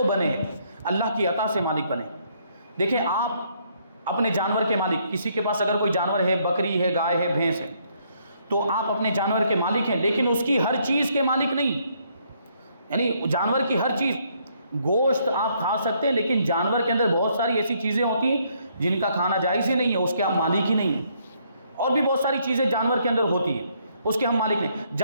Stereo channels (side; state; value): both; inverted; correlation -0.70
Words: بنے، اللہ کی عطا سے مالک بنے۔ دیکھیں آپ اپنے جانور کے مالک، کسی کے پاس اگر کوئی جانور ہے، بکری ہے، گائے ہے، بھینس ہے، تو آپ اپنے جانور کے مالک ہیں، لیکن اس کی ہر چیز کے مالک نہیں، یعنی جانور کی ہر چیز، گوشت آپ کھا سکتے ہیں لیکن جانور کے اندر بہت ساری ایسی چیزیں ہوتی ہیں جن کا کھانا جائز ہی نہیں ہے، اس کے آپ مالک ہی نہیں ہیں۔ اور بھی بہت ساری چیزیں جانور کے اندر ہوتی ہیں، اس کے ہم مالک نہیں۔